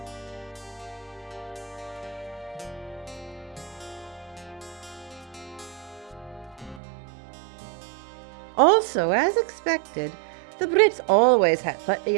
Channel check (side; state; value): left; drops out; at 6.8 s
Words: Also, as expected, the Brits always had plenty